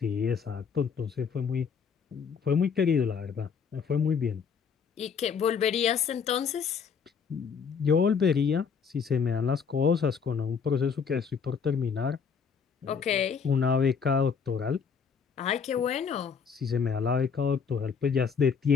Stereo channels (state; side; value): quieter; right; 6.3 dB